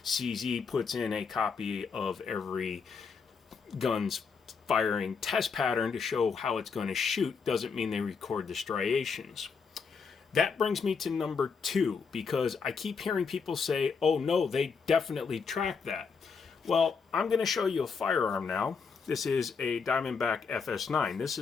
CZ puts in a copy of every gun's firing test pattern to show how it's going to shoot. Doesn't mean they record the striations. That brings me to number 2, because I keep hearing people say, oh no, they definitely track that. Well, I'm going to show you a firearm now. This is a Diamondback FS9. This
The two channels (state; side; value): quieter; right; 5.5 dB